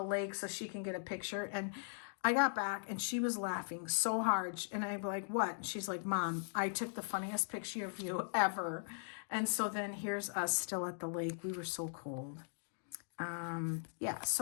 lake so she can get a picture. And I got back and she was laughing so hard. And I'm like, what? And she's like, Mom, I took the funniest picture of you ever. And so then here's us still at the lake. We were so cold. Yeah,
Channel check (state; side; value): silent; right; digital silence